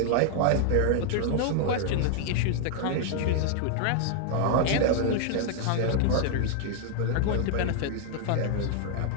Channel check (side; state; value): both; different; correlation 0.00